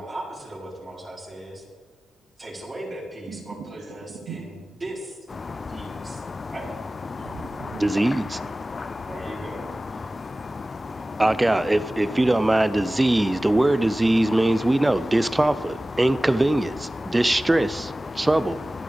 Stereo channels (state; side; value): normal; both; correlation 0.97